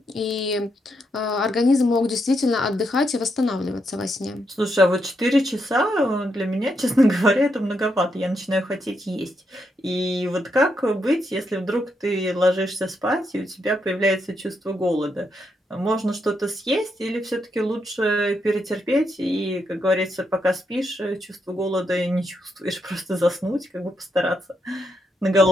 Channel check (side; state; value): both; normal; correlation 0.80